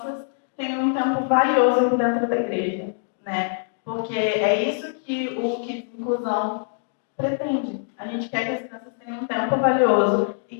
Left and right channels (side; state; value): right; silent; digital silence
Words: tenham um tempo valioso dentro da igreja, né? Porque é isso que o Kids Inclusão pretende. A gente quer que as crianças tenham um tempo valioso e